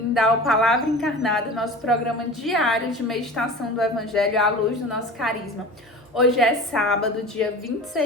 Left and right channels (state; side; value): normal; both; correlation 0.35